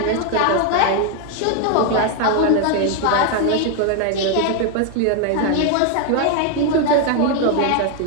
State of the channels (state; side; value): different; both; correlation 0.00